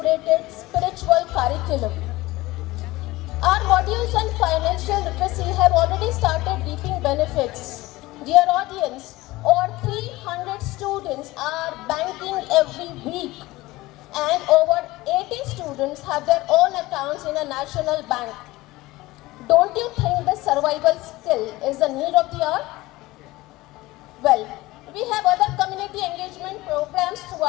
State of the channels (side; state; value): right; quieter; 19.3 dB